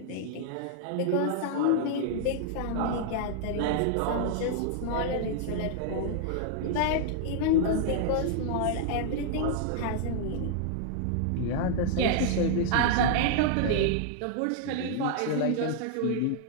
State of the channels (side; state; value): both; different; correlation -0.01